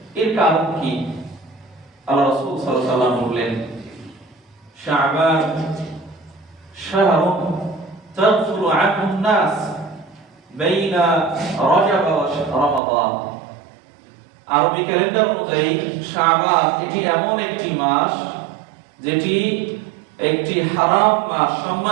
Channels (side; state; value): left; drops out; at 12.8 s